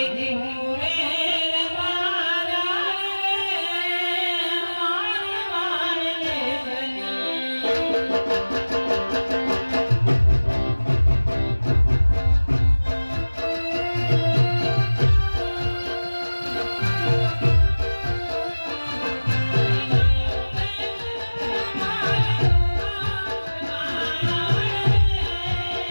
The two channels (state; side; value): inverted; both; correlation -1.00